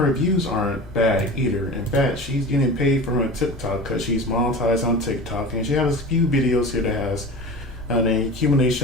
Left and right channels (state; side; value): normal; both; correlation 0.34